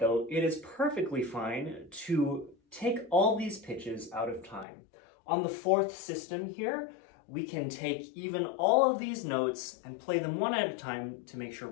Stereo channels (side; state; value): right; drops out; at 4.7 s